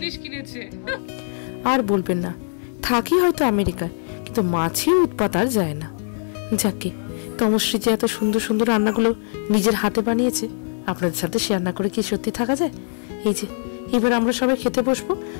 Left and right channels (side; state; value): right; silent; 64 dB below the other